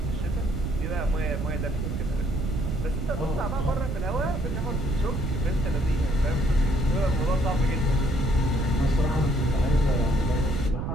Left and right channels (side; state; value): right; noise; rumble, 2 dB below the sound